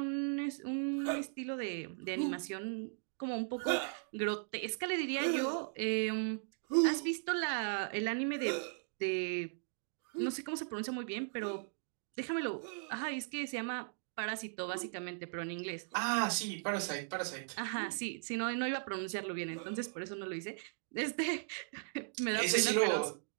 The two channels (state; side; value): silent; left; digital silence